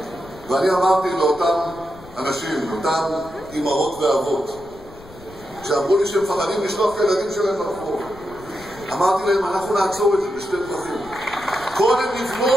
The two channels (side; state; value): left; noise; rumble, 21 dB below the sound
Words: ואני אמרתי לאותם אנשים, אותם אמהות ואבות, שאמרו לי שהם מפחדים לשלוח את הילדים שלהם לרחוב, אמרתי להם, אנחנו נעצור את זה בשתי דרכים. קודם